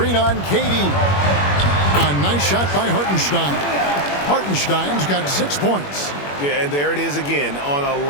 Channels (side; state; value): right; late; 21 ms